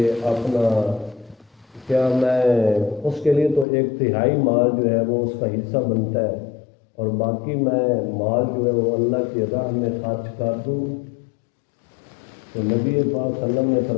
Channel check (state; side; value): drops out; right; at 3.7 s